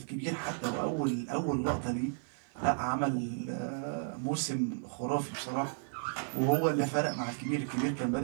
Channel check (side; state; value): left; silent; 55 dB below the other